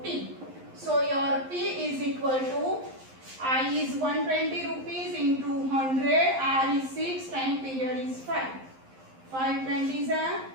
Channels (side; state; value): left; late; 11 ms